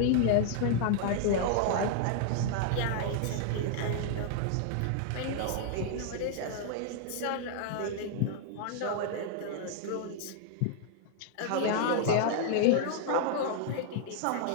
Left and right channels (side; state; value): both; different; correlation -0.01